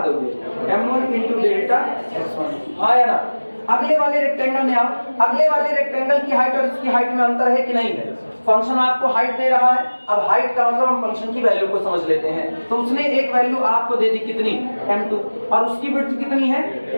दोगे, m1 इंटू डेल्टा x1, हाँ या ना। अगले वाले रेक्टेंगल में आओ, अगले वाले रेक्टेंगल की हाइट और इसकी हाइट में अंतर है कि नहीं है। फंक्शन आपको हाइट दे रहा है, अब हाइट का मतलब हम फंक्शन की वैल्यू को समझ लेते हैं। तो उसने एक वैल्यू आपको दे दी कितनी, m2, और उसकी विड्थ कितनी है,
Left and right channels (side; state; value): both; inverted; correlation -1.00